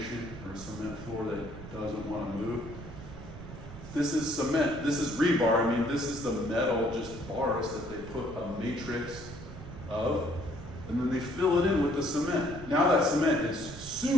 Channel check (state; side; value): noise; right; rumble, 13 dB below the sound